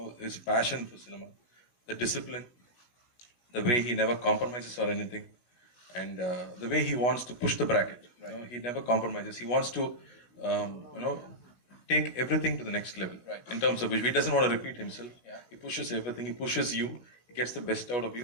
his passion for cinema, the discipline, the way he never compromises or anything, and the way he wants to push the bracket. You know, he never compromises. He wants to, take everything to the next level. In terms of which he doesn't want to repeat himself. He pushes everything. He pushes you. He gets the best out of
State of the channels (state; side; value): late; right; 16 ms